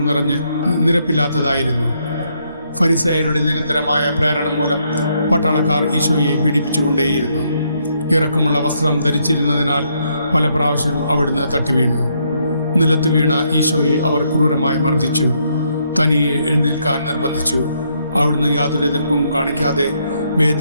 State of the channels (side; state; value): both; inverted; correlation -0.74